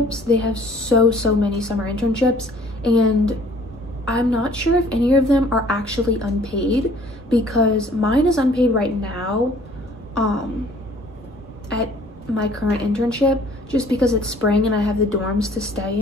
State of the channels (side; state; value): both; normal; correlation 0.55